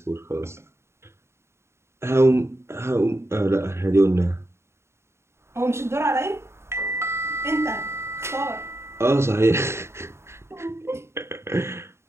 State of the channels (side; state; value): left; late; 0.13 ms